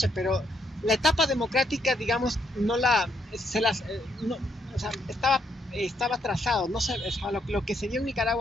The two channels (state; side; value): normal; both; correlation 0.75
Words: pero la etapa democrática, digamos, estaba trazado. No sé, lo que se dio en